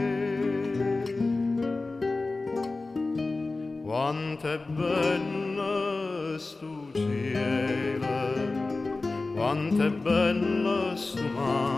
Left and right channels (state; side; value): quieter; right; 3.4 dB